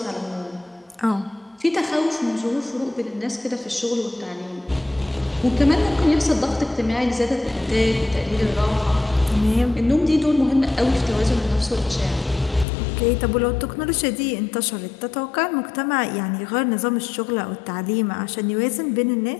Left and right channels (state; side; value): drops out; right; at 12.7 s